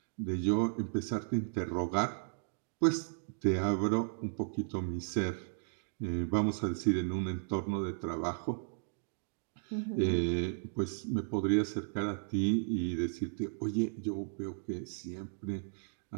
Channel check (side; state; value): left; silent; digital silence